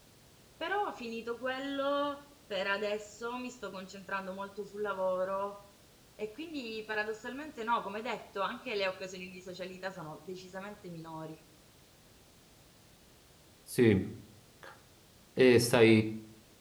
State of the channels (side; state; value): both; identical; correlation 1.00